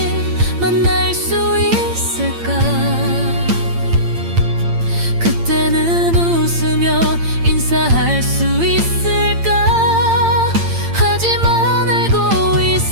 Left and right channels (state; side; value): late; left; 8.8 ms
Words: 만날 수 있을까? 그때는 웃으며 인사할 수 있을까? 하지만 알고